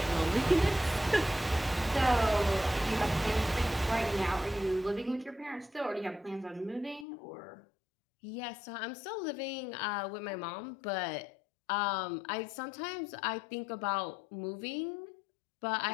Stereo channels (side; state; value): right; drops out; at 7.1 s